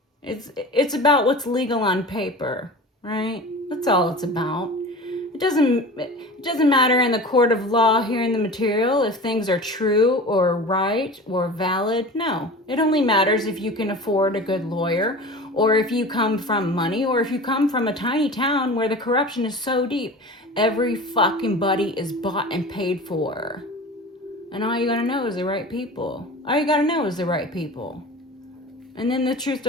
it's about what's legal on paper, right? That's all it's about. It doesn't matter in the court of law hearing the material if things are true or right or valid. No, it only matters if you can afford a good lawyer, or if you come from money, or if you come from a tiny town where the corruption is so deep. Every fucking buddy is bought and paid for. And all you gotta know is the right people. All you gotta know is the right people. And then the truth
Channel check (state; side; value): normal; both; correlation 0.36